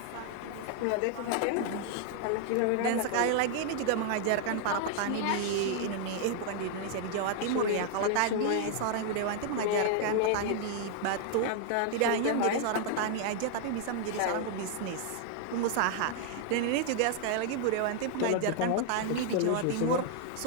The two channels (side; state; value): both; different; correlation 0.00